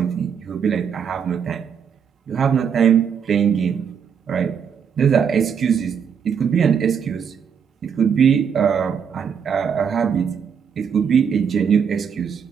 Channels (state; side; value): quieter; left; 7.2 dB